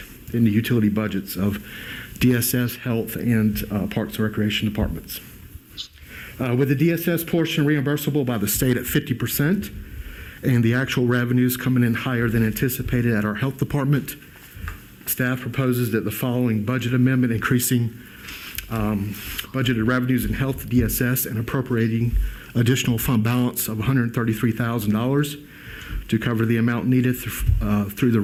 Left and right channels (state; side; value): identical; both; correlation 1.00